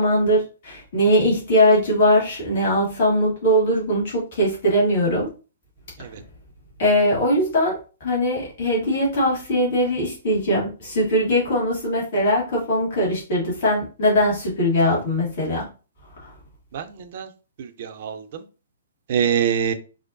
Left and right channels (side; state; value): both; inverted; correlation -0.43